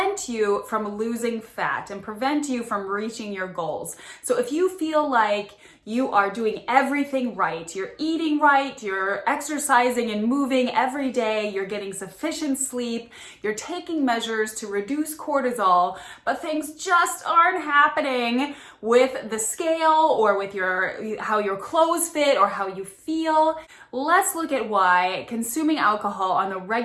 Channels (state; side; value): identical; both; correlation 1.00